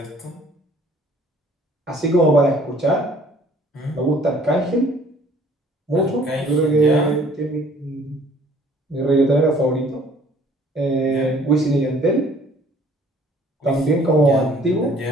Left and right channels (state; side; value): normal; both; correlation 0.56